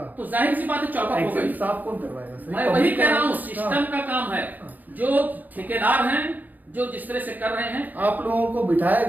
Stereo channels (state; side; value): late; left; 0.083 ms